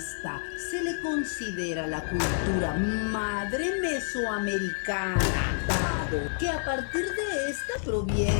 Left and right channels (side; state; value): right; silent; 59 dB below the other